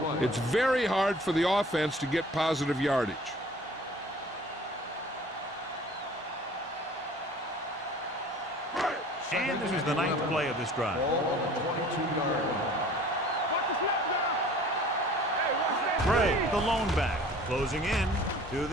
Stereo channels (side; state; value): both; normal; correlation 0.48